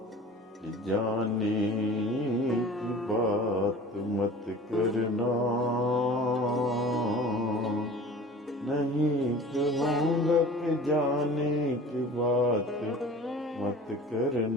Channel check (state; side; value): normal; both; correlation 0.42